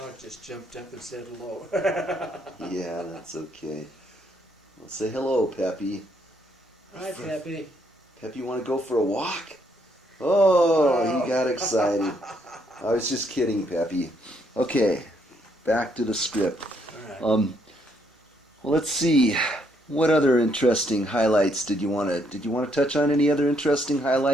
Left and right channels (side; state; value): both; normal; correlation 0.72